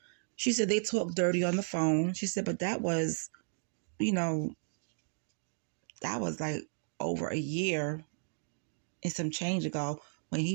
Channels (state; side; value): silent; left; digital silence